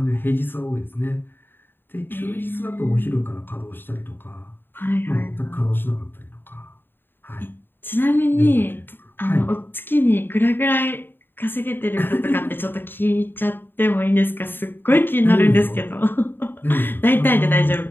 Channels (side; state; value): right; late; 0.098 ms